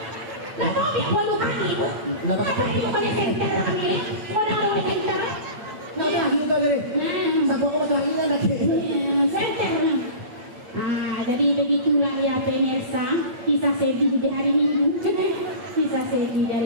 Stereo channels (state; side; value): late; left; 8.9 ms